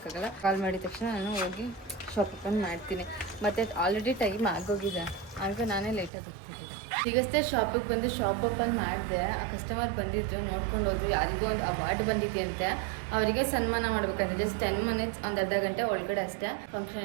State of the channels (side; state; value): left; drops out; at 6.1 s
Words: ಕಾಲ್ ಮಾಡಿದ ತಕ್ಷಣ ನಾನು ಹೋಗಿ ಶಾಪ್ ಓಪನ್ ಮಾಡ್ತೀನಿ. ಮತ್ತು ಆಲ್ರೆಡಿ ಟೈಮ್ ಆಗೋಗಿದೆ, ಆಗ ನಾನೇ ಲೇಟಾಗಿ ಹೋಗ್ತಿದ್ದೆ. ಈಗಷ್ಟೇ ಶಾಪಿಗೆ ಬಂದು ಶಾಪ್ ಓಪನ್ ಮಾಡಿದೆ. ಆ ಕಸ್ಟಮರ್ ಬಂದಿದ್ದು ನೋಡ್ಕೊಂಡು ಹೋದ್ರು. ಯಾರಿಗೂ ಒಂದು ಅವಾರ್ಡ್ ಬಂದಿದೆಯಂತೆ, ಅವರಿಗೆ ಸನ್ಮಾನ ಮಾಡ್ಬೇಕಂತ. ಜಸ್ಟ್ 10 ಮಿನಿಟ್ಸ್, ಒಂದು ಅರ್ಧ ಗಂಟೆ ಒಳಗಡೆ ಅಷ್ಟೇ ಫಂಕ್ಷನ್